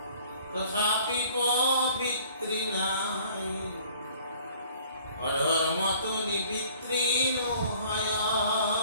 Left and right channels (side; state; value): both; inverted; correlation -0.54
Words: তথাপি পবিত্ৰী নাই, অধৰ্মটো নিবিত্ৰী নহয়,